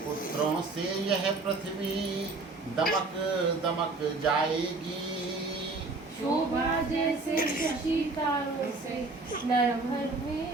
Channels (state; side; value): quieter; left; 3.5 dB